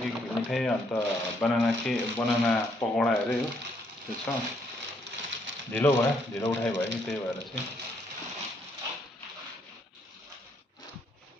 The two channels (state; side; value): normal; both; correlation 0.71